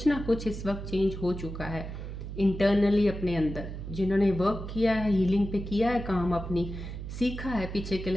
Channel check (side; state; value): right; noise; hum, 8 dB below the sound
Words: ना कुछ इस वक्त चेंज हो चुका है इंटरनली अपने अंदर। जिन्होंने वर्क किया है, हीलिंग पे किया है काम, अपनी सीखा है पीछे के